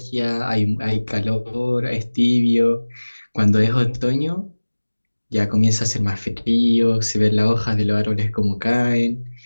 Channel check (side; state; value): both; inverted; correlation -1.00